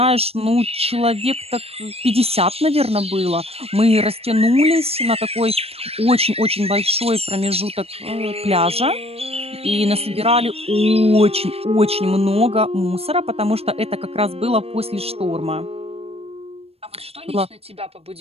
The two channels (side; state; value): left; late; 0.29 ms